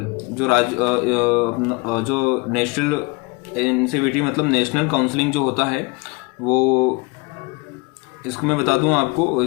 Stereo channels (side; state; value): right; quieter; 26.8 dB